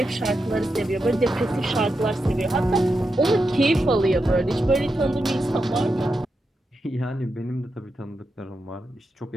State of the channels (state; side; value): normal; both; correlation 0.87